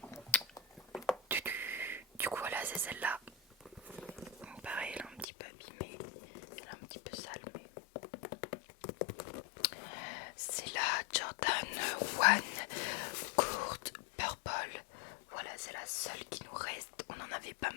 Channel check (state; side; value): drops out; right; at 5.2 s